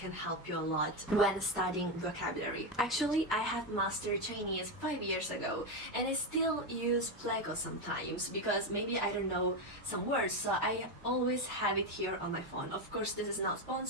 help you a lot when studying vocabulary. Actually, I have mastered Chinese 5 years ago and I still use Pleco sometimes because maybe I don't know some words, so I always have it here on my phone. Of course, this is not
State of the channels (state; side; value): normal; both; correlation 0.10